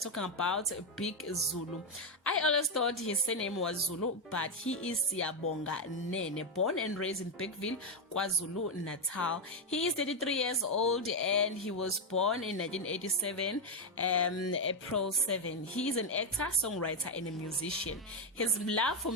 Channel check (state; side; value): normal; both; correlation 0.05